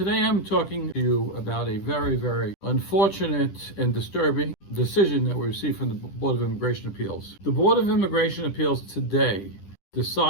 I'm talking to you about a very unfortunate and disturbing decision that we received from the Board of Immigration Appeals. The Board of Immigration Appeals today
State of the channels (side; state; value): right; late; 10 ms